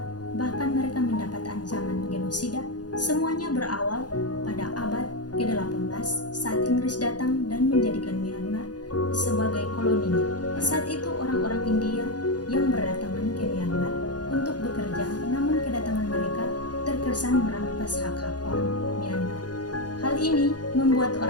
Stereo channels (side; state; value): right; late; 0.69 ms